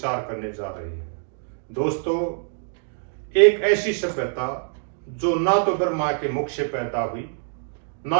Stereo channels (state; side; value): silent; left; 62 dB below the other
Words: करने जा रहे हैं। दोस्तों, एक ऐसी सभ्यता जो ना तो ब्रह्मा के मुख से पैदा हुई,